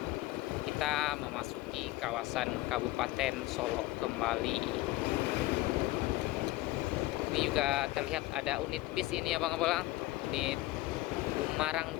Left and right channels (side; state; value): right; quieter; 18.6 dB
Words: Kita memasuki kawasan Kabupaten Solo kembali. Ini juga terlihat ada unit bis ini ya Bang Bolang, unit Umarang